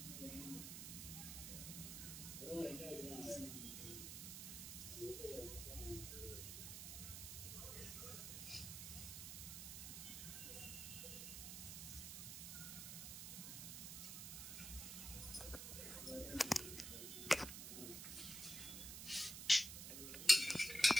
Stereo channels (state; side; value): noise; right; hiss, 6 dB below the sound